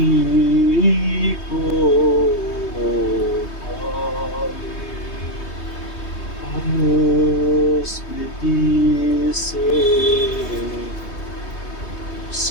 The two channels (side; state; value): right; late; 3.3 ms